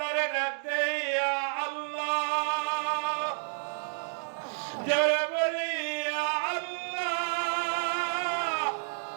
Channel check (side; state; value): left; silent; digital silence